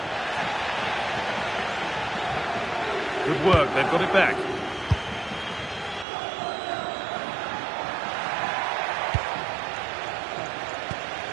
Good work, they've got it back.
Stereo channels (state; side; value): drops out; left; at 6.1 s